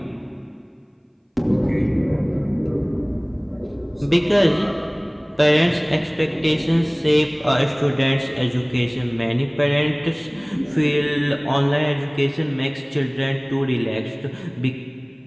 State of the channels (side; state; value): both; identical; correlation 1.00